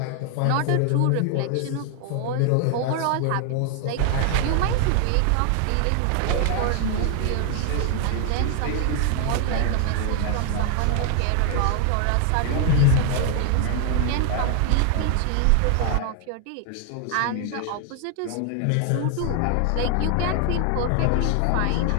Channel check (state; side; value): different; both; correlation 0.00